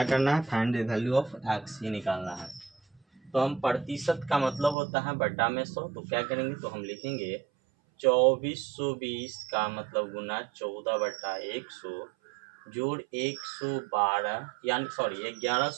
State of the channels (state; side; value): drops out; left; at 4.8 s